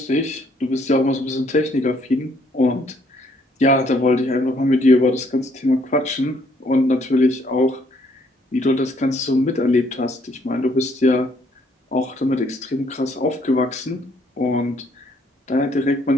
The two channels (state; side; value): normal; both; correlation 0.66